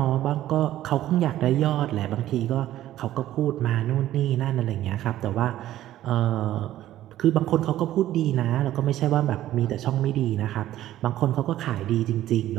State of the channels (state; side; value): quieter; left; 13.5 dB